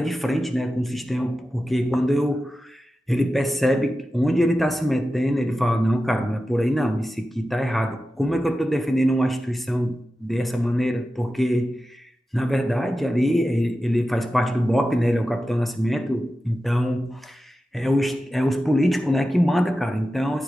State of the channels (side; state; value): both; normal; correlation 0.93